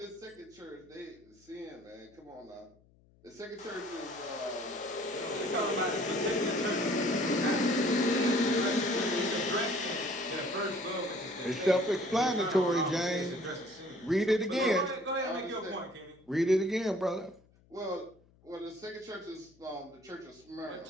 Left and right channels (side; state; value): left; noise; hum, 30 dB below the sound